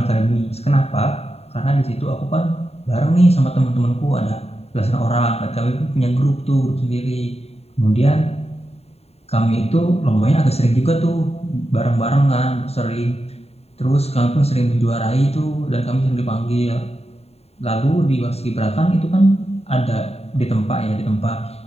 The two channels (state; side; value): late; right; 0.30 ms